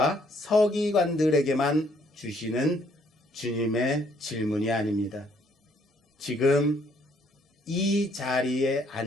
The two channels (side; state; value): both; normal; correlation 0.66